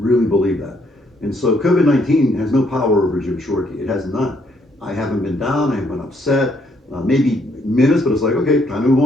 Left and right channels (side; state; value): both; normal; correlation 0.70